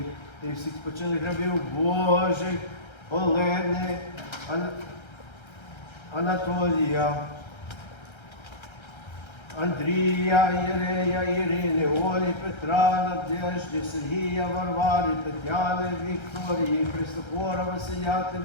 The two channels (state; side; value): late; right; 1.3 ms